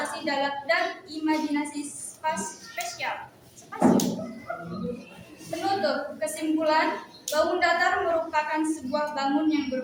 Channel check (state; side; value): identical; both; correlation 1.00